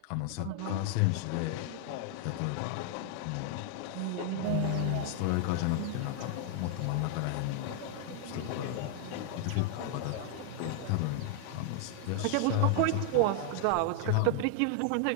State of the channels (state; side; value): different; both; correlation 0.00